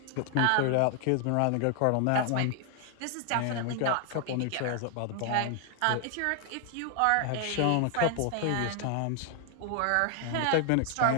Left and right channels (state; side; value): different; both; correlation 0.00